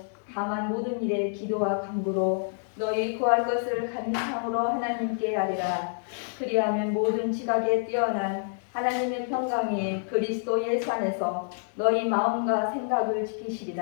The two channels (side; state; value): right; silent; digital silence